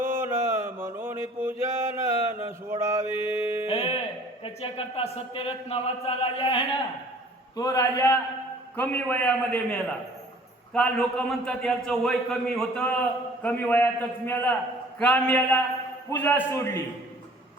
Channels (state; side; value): normal; both; correlation 0.52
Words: म्हणून पूजन न सोडावे. त्याच्याकरता सत्यरथ नावाचा राजा आहे ना, तो राजा कमी वयामध्ये मेला. का लोक म्हणतात याचं वय कमी होतं, कमी वयातच मेला. का मेला? पूजा सोडली,